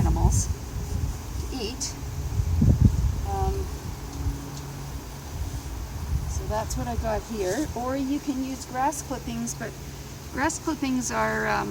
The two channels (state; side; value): identical; both; correlation 1.00